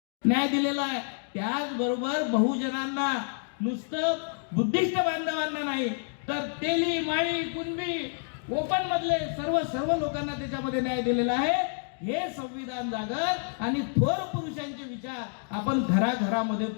न्याय दिलेला आहे। त्याचबरोबर बहुजनांना नुसतं बुद्धिस्ट बांधवांना नाही तर तेली माळी कुणबी कोकण मधले सर्व लोकांना त्याच्यामध्ये न्याय दिलेला आहे। हे संविधान जागर आणि थोर पुरुषांचे विचार आपण घराघरामध्ये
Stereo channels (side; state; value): right; silent; 59 dB below the other